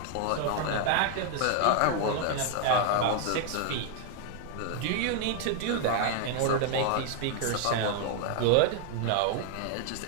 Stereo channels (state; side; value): different; both; correlation 0.00